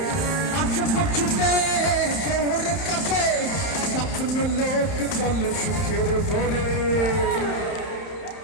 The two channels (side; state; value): right; late; 31 ms